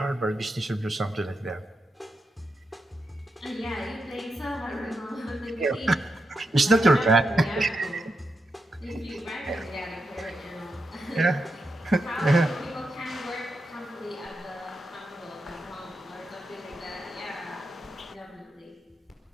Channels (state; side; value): normal; both; correlation 0.86